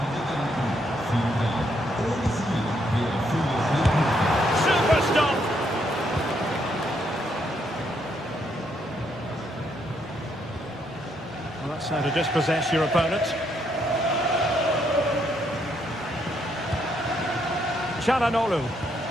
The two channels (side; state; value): both; normal; correlation 0.74